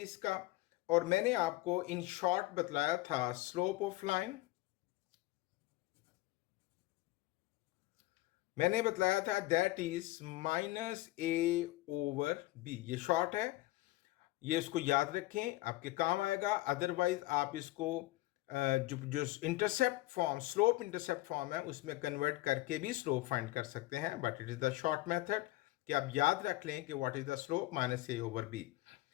और मैंने आपको इन शॉर्ट बतलाया था स्लोप ऑफ लाइन। मैंने बतलाया था that is minus A over b. ये शॉर्ट है, ये इसको याद रखें, आपके काम आएगा। अदरवाइज आप इसको जो intercept form, slope intercept form है, उसमें कन्वर्ट करके भी स्लोप फाइंड कर सकते हैं, but it is the short method कि आप याद रख लें कि what is the slope, minus A over B.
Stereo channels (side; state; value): right; quieter; 18.8 dB